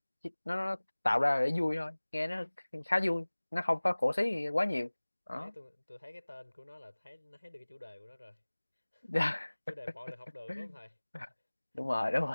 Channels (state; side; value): inverted; both; correlation -1.00